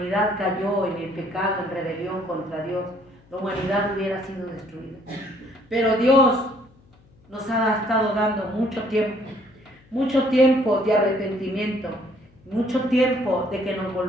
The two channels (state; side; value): noise; left; hum, 29 dB below the sound